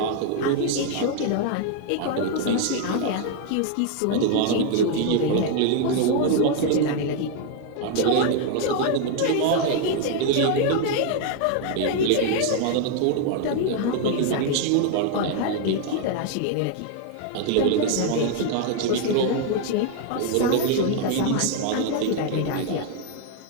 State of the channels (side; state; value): both; different; correlation 0.00